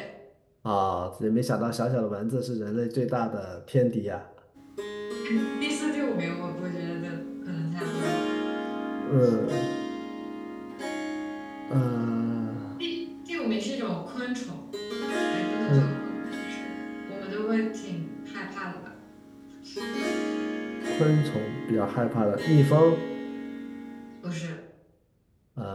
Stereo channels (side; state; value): both; identical; correlation 1.00